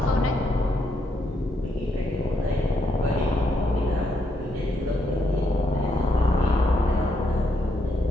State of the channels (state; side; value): normal; both; correlation 0.77